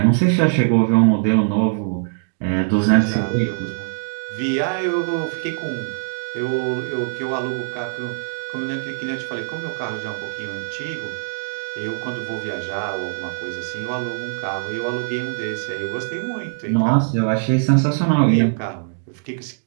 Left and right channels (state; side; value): silent; left; digital silence